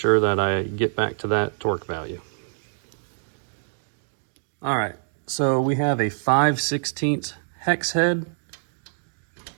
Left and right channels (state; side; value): silent; left; digital silence